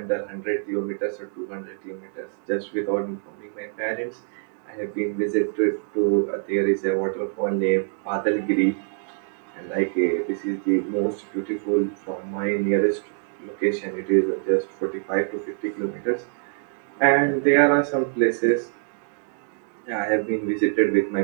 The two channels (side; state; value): left; silent; 56 dB below the other